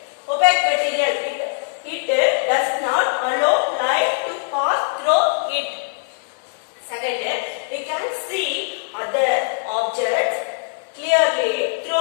Opaque material, it does not allow light to pass through it. Second, we can see other objects clearly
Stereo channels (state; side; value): silent; right; digital silence